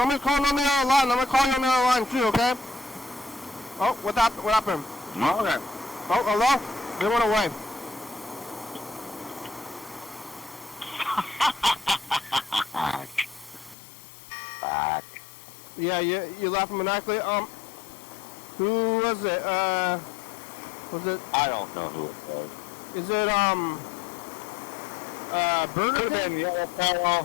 calling on the other line. I'm going to call you on the other line too, okay? Oh, what happened? Okay. Oh, hello? They went away. Fuck. Yeah, you laughing maniacally. Who was it? Was it? I don't know who it was. Is it Burger Could have King? been Yellow Fellow.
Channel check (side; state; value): right; drops out; at 13.8 s